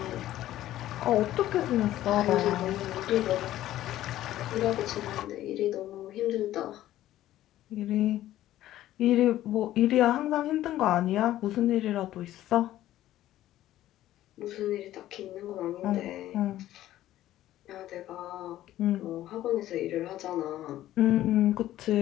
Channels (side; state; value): right; quieter; 13.8 dB